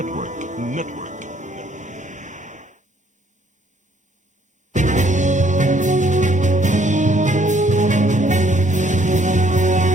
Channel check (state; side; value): normal; both; correlation 0.65